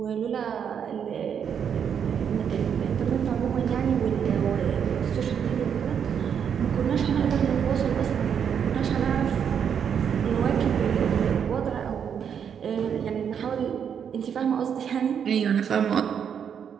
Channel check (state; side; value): quieter; left; 7.8 dB